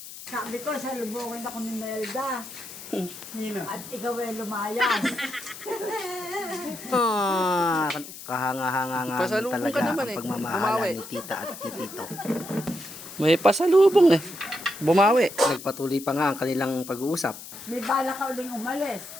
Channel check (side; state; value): left; noise; hiss, 13 dB below the sound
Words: Sabi ko, salubungin ako ni Melda. At ikaw ay lumayas. Kahanga-hanga nga Pasalubong talaga ka naman ang eh. pagmamahalan Bumawi. ni tita at ni tito. May pasalubong eh. Bumawi. Nagpatuloy pa nga ang kanilang pag-uusap. May bala ka uling umalis.